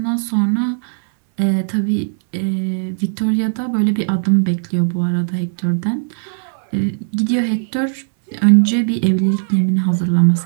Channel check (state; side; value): silent; left; 65 dB below the other